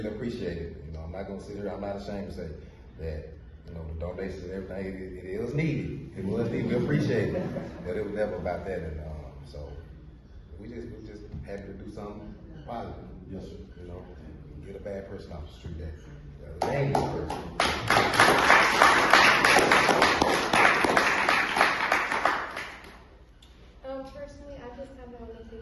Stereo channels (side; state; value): both; identical; correlation 1.00